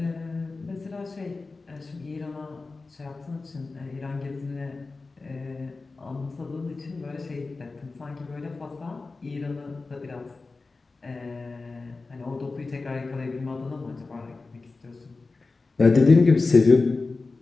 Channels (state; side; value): quieter; right; 3.8 dB